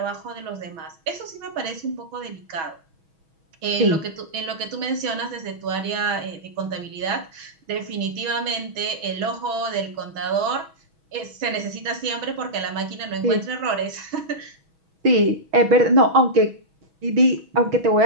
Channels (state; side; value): late; left; 6.2 ms